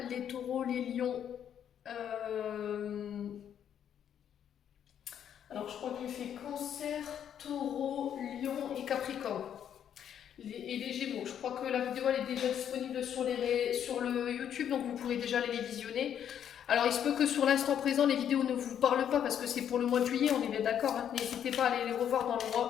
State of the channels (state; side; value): quieter; right; 9.3 dB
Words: les taureaux, les lions. Alors je crois que j'ai fait cancer, taureau, lion et capricorne. Et les gémeaux. Je crois que la vidéo elle est déjà disponible sur le YouTube, donc vous pourrez déjà aller les visionner. Alors il se peut que sur l'instant présent les vidéos ne vous parlent pas parce que c'est pour le mois de juillet, on est bien d'accord, hein. N'hésitez pas à aller les revoir dans le